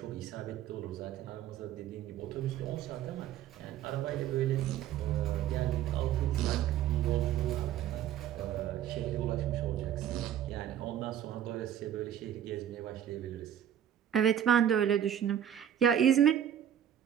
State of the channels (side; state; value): left; quieter; 10.2 dB